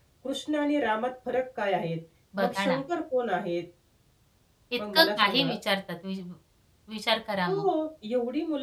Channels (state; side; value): identical; both; correlation 1.00